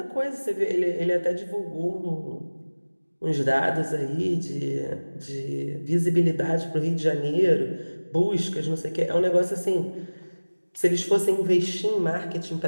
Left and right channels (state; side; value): inverted; both; correlation -1.00